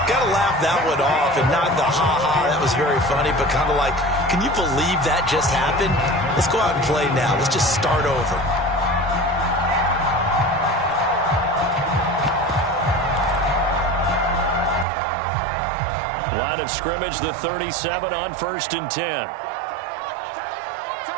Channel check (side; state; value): left; drops out; at 14.9 s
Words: Got to laugh that one off, and not the ha-ha, that was very funny, but kind of like, can you believe that just happened? Let's go out and play now. Let's just start over. Line of scrimmage, the 37 on 1st and 10.